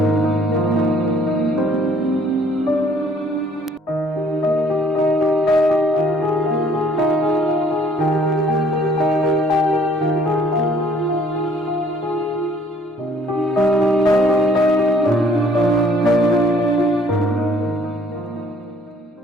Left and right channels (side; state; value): both; normal; correlation 0.59